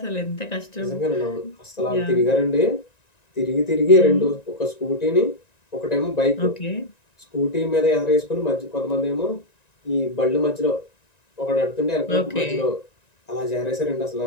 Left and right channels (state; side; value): late; right; 1.9 ms